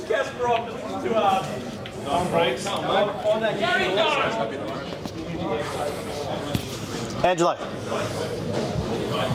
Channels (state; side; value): identical; both; correlation 1.00